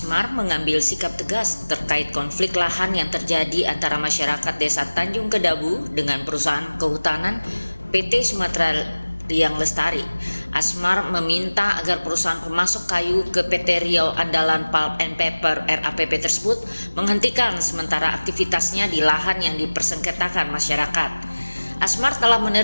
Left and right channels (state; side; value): inverted; both; correlation -1.00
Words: mengambil sikap tegas terkait konflik lahan yang terjadi antara masyarakat Desa Tanjung Kedabu dengan perusahaan kehutanan PT Sumatera Riang Lestari. Asmar meminta agar perusahaan pemasok kayu ke PT Riau Andalan Pulp and Paper RAPP tersebut menghentikan sementara aktivitasnya di lahan yang dipersengketakan masyarakat. Asmar telah